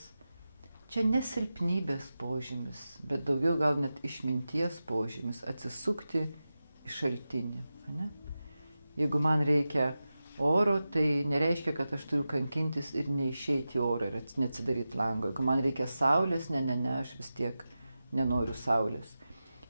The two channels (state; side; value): inverted; both; correlation -0.93